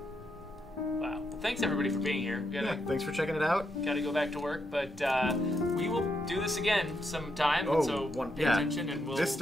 Wow. Well, thanks everybody for being here. We Yeah, thanks for checking it out. gotta go back to work, but we will do this again sometime. Oh, so pay attention, and we'll. This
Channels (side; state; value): both; normal; correlation 0.80